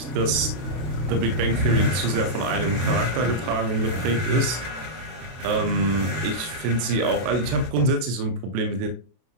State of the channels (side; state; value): left; late; 32 ms